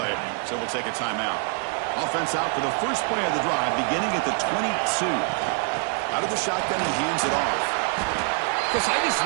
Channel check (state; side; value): quieter; left; 38.9 dB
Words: so we'll take a timeout. Offense out for the first play of the drive, beginning at the 22. Out of the shotgun, he hands it off. Because I just